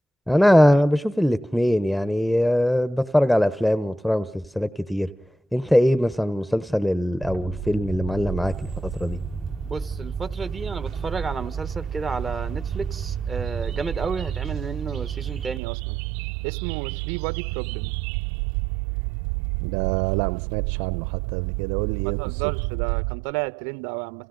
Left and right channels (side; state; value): left; drops out; at 15.6 s